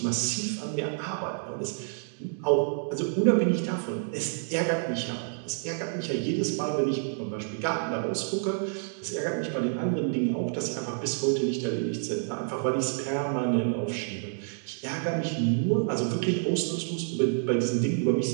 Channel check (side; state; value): left; silent; digital silence